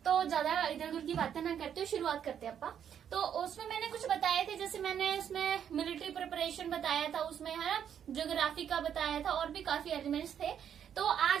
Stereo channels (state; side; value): quieter; left; 8.8 dB